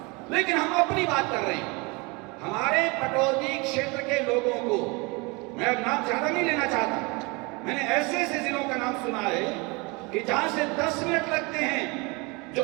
लेकिन हम अपनी बात कर रहे हैं। हमारे पटौदी क्षेत्र के लोगों को, मैं अब नाम ज्यादा नहीं लेना चाहता, मैंने ऐसे ऐसे जिलों का नाम सुना है कि जहां से 10 मिनट लगते हैं जो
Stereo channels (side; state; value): left; quieter; 27.8 dB